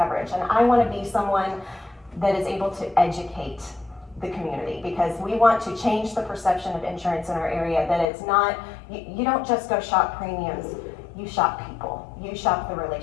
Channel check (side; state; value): right; drops out; at 8.1 s